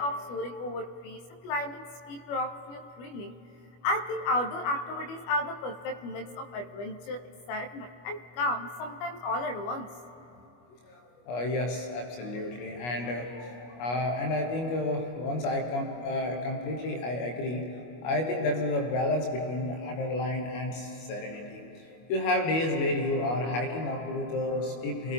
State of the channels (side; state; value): right; late; 25 ms